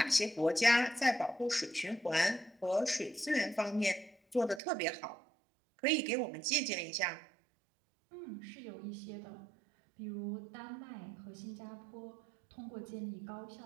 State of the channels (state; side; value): drops out; left; at 4.6 s